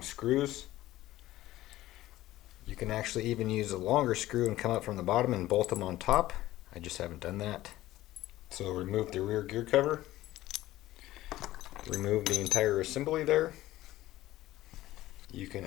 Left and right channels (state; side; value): quieter; right; 15.7 dB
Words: screws. You can actually even use a longer screw and come up from the bottom and bolt them on top. I just haven't done that. So remove the rear gear cover. Remove the entire assembly there. You can